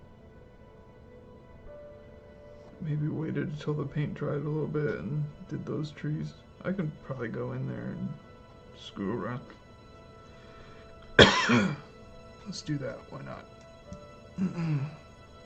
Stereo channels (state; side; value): identical; both; correlation 1.00